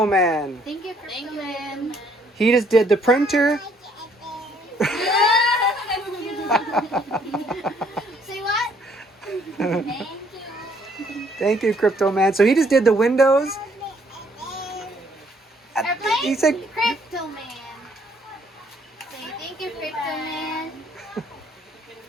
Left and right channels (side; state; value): both; normal; correlation 0.65